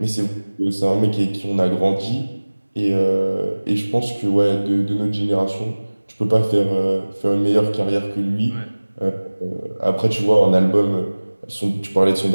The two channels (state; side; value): inverted; both; correlation -1.00